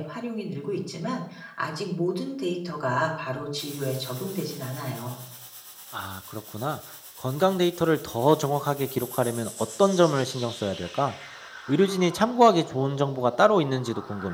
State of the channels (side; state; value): both; identical; correlation 1.00